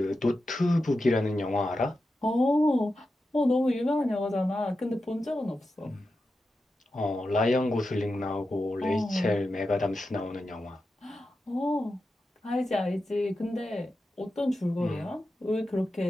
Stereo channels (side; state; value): both; normal; correlation 0.90